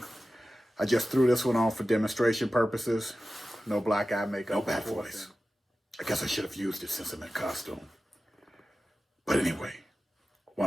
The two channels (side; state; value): both; normal; correlation 0.94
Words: I just threw this one on for demonstration purposes. No black eye makeup. No bad voice. I guess I should have used it since I'm in costume. But anyway,